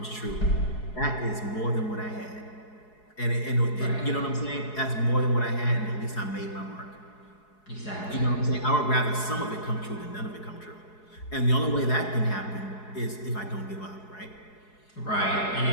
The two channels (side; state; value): right; late; 4.7 ms